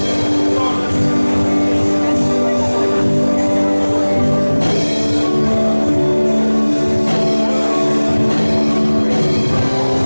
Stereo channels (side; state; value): both; inverted; correlation -1.00